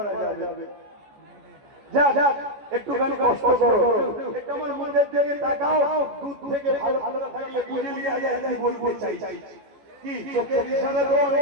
যাবে। যা একটুখানি কষ্ট করো, একটু আমার মুখের দিকে তাকাও। দুধ থেকে ভালো থাকলে বুঝে নিয়ে যায়, তাই বলতে চাই। কি চোখের ইশারা তো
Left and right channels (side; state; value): left; late; 14 ms